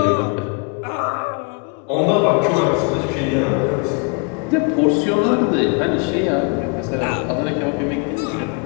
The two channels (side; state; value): right; quieter; 33.0 dB